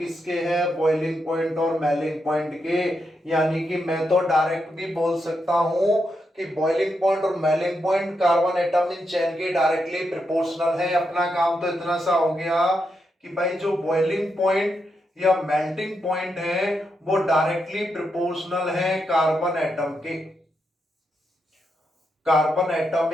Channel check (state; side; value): normal; both; correlation 0.83